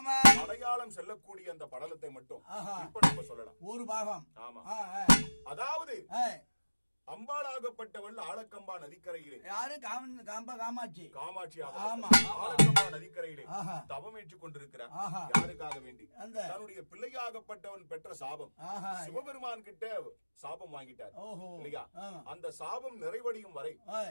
மலையாளம் செல்லக்கூடிய அந்த படலத்தை மட்டும் இப்ப நம்ம சொல்லலாம். ஒரு பாகம். ஆமா. அதாவது அம்பாளாகப்பட்டவள் ஆலக்கம்பா நதிக்கரையிலே யாரு காமாட்சி ஆலக்கம்பா நதிக்கரையிலே தவம் ஏற்றுக் கொண்டிருக்கிறார். யாருக்காக வேண்டி? தன்னுடைய பிள்ளையாகப்பட்டவன் பெற்ற சாபம் சிவபெருமான் கிட்ட சாபம் வாங்கிட்டார் இல்லையா? அந்த சாபம் நிறைவடையும் வரை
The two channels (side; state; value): both; inverted; correlation -1.00